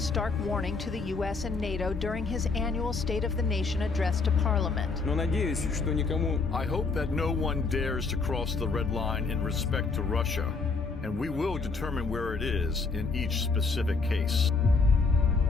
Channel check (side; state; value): right; quieter; 4.3 dB